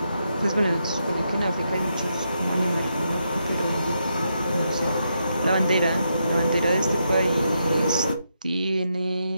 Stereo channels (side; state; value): both; inverted; correlation -0.82